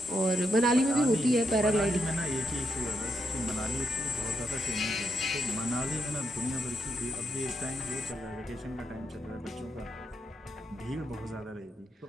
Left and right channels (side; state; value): both; normal; correlation 0.81